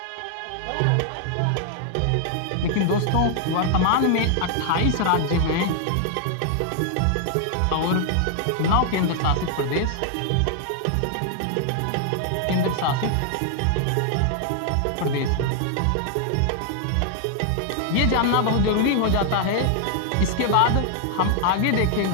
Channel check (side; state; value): both; different; correlation 0.00